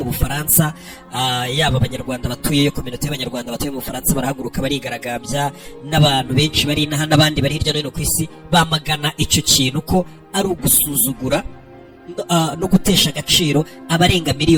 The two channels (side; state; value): both; identical; correlation 1.00